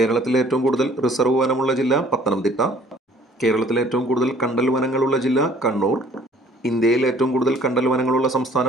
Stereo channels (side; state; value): both; normal; correlation 0.56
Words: ഏറ്റവും കൂടുതൽ റിസർവ് വനമുള്ള ജില്ല പത്തനംതിട്ട. കേരളത്തിലെ ഏറ്റവും കൂടുതൽ കണ്ടൽ വനങ്ങളുള്ള ജില്ല കണ്ണൂർ. ഇന്ത്യയിൽ ഏറ്റവും കൂടുതൽ കണ്ടൽ വനങ്ങളുള്ള